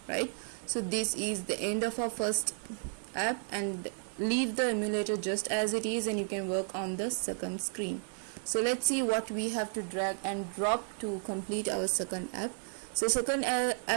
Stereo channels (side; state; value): left; silent; 56 dB below the other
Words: right? So this is the end of our first app, and leave the emulator just as it is, and you can work on the second screen. So let's see what we have to drag and drop to complete our second app. So second